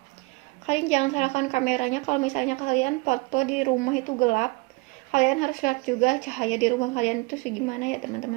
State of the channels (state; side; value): quieter; left; 26.3 dB